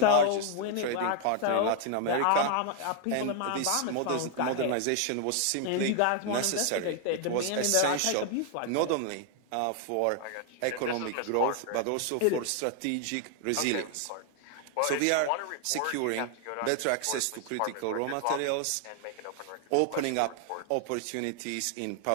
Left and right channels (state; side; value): different; both; correlation 0.00